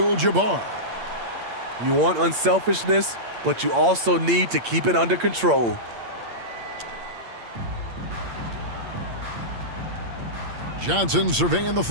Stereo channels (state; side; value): late; left; 8.7 ms